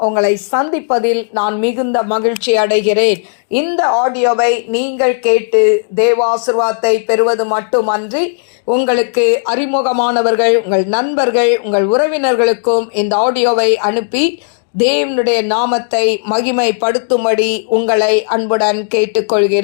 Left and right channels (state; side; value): silent; right; digital silence